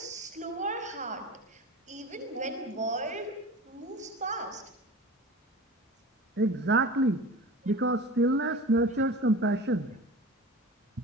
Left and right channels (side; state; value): both; normal; correlation 0.34